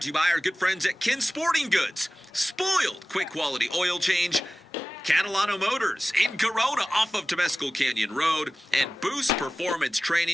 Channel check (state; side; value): normal; both; correlation 0.96